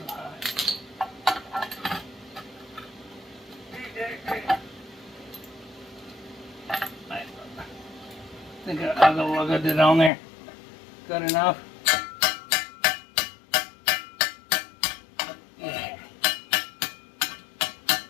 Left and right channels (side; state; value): right; drops out; at 10.1 s